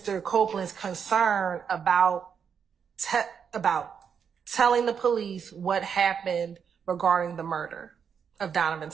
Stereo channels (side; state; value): left; quieter; 7.1 dB